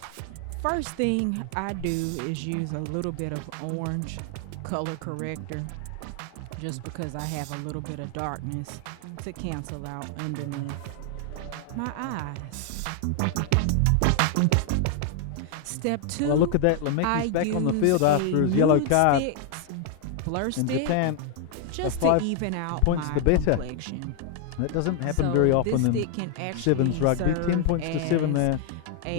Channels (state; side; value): different; both; correlation 0.00